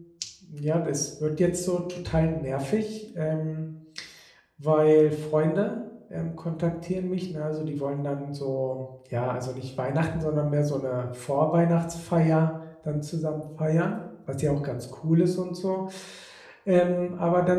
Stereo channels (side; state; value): both; identical; correlation 1.00